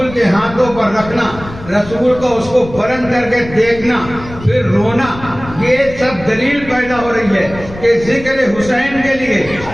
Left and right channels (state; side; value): noise; left; rumble, 14 dB below the sound